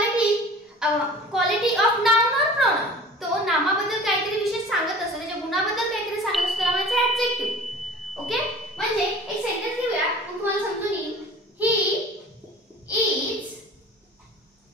quality of noun or pronoun. तो नामाबद्दल काहीतरी विशेष सांगत असतो, त्याच्या गुणाबद्दल काहीतरी सांगत असतो, त्याला म्हणायचं ॲडजेक्टिव्ह. ओके, म्हणजे एक सेंटेन्स घेऊया मग तुम्हाला समजून येईल. He is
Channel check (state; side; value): normal; both; correlation 0.43